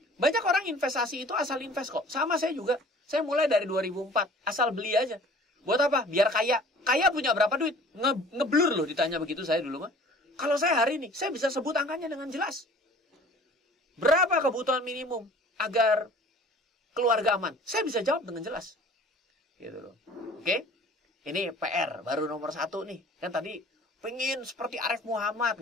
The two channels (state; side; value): normal; both; correlation 0.48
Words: Banyak orang investasi itu asal invest kok. Sama saya juga. Saya mulai dari 2004. Asal beli aja. Buat apa? Biar kaya. Kaya punya berapa duit? Ngeblur loh ditanya begitu saya dulu mah. Kalau saya hari ini, saya bisa sebut angkanya dengan jelas. Berapa kebutuhan minimum agar keluarga aman? Saya bisa jawab dengan jelas. Gitu loh. Oke? Ini PR, baru nomor 1 nih. Kan tadi pengen seperti Arif Muhammad.